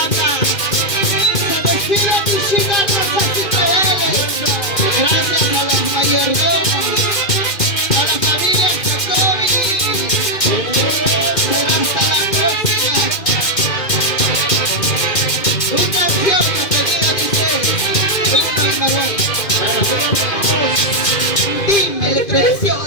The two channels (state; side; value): late; right; 2.4 ms